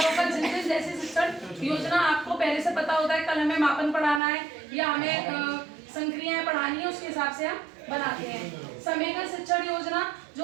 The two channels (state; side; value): drops out; left; at 4.2 s